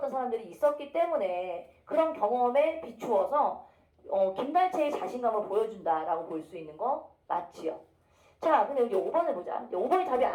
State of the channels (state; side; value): identical; both; correlation 1.00